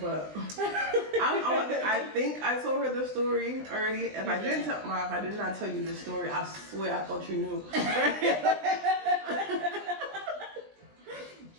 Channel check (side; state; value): left; late; 20 ms